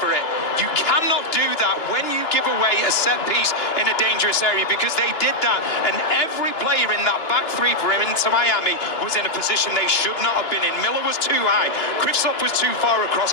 it. You cannot do that when you give away a set piece in a dangerous area, because they did that. And every player in that back three for him into Miami was in a position they should not have been in. Miller was too high. Kristoff was too far across.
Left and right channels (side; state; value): right; late; 2.9 ms